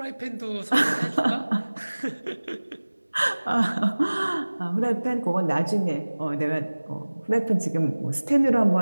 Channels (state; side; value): inverted; both; correlation -1.00